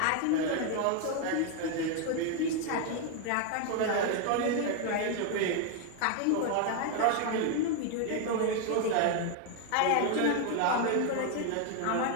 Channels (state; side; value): different; both; correlation 0.00